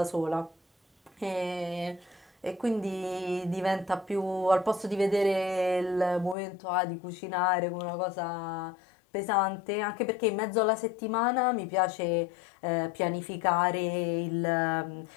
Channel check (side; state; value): right; drops out; at 6.4 s